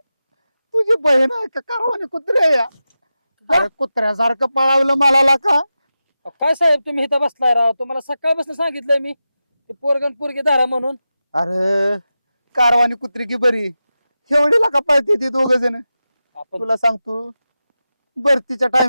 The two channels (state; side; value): inverted; both; correlation -0.92